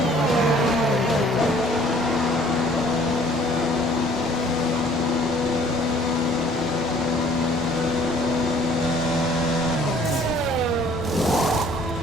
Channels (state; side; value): normal; both; correlation 0.56